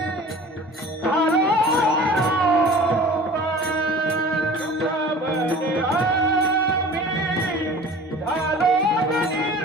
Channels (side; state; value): both; normal; correlation 0.42